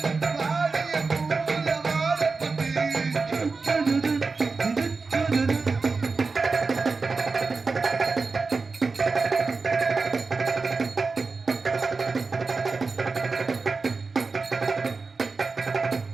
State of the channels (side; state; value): left; quieter; 4.3 dB